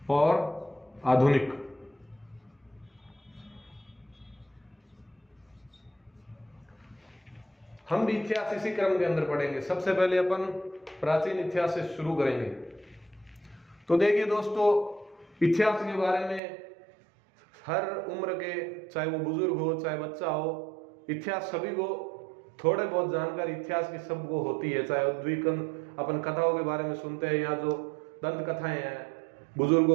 और आधुनिक। हम भी इतिहास इसी क्रम के अंदर पढ़ेंगे। सबसे पहले अपन प्राचीन इतिहास से शुरू करेंगे। तो देखिए दोस्तों, इतिहास के बारे में हर उम्र के, चाहे वो बुजुर्ग हो चाहे बच्चा हो, इतिहास सभी को थोड़े बहुत जानकारी इतिहास की सबको होती है। चाहे उद्वीकन अपन कथाओं के बारे में सुनते हैं, या जो दंत कथाएं हैं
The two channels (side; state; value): left; drops out; at 16.4 s